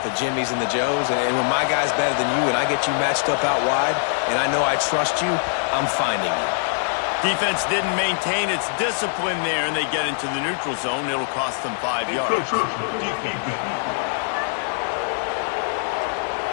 the Jimmys and the Joes. And when my guy's better than you and I get you matched up out wide and I know I trust you, I'm finding you. Defense didn't maintain its discipline there, and they get into the neutral zone. It'll cost them 5 yards.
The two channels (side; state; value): right; silent; digital silence